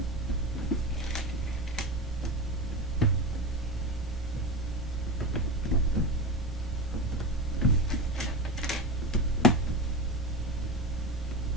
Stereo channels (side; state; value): right; noise; rumble, 7 dB below the sound